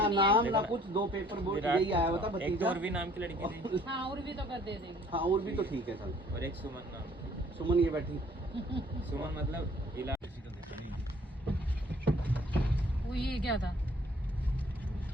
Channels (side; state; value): both; normal; correlation 0.58